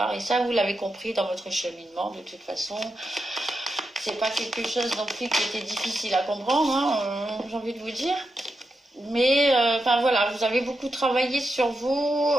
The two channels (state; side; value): normal; both; correlation 0.87